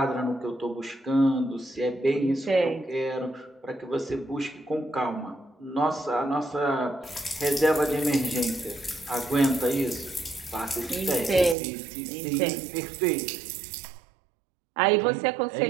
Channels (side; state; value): left; drops out; at 11.6 s